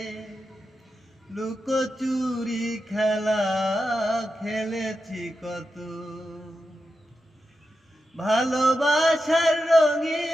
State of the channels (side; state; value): both; normal; correlation 0.89